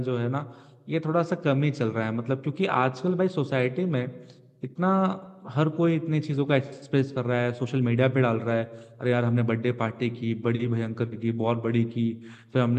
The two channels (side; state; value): both; identical; correlation 1.00